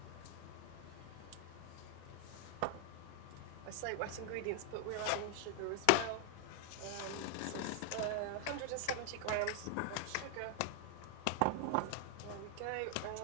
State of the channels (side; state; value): both; different; correlation 0.00